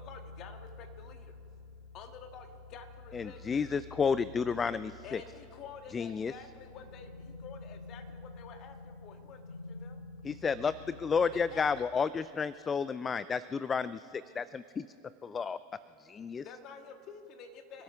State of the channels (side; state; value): right; quieter; 5.4 dB